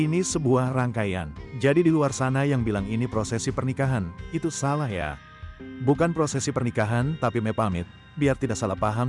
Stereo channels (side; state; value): both; identical; correlation 1.00